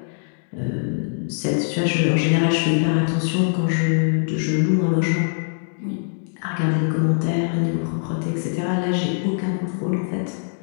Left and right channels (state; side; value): silent; right; digital silence